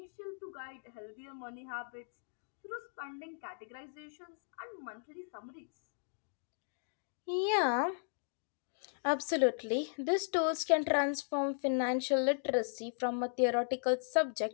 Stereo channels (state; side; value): silent; right; digital silence